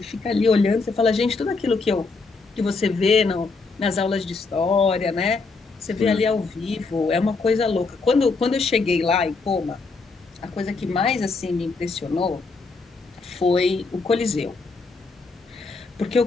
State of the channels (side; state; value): right; quieter; 4.1 dB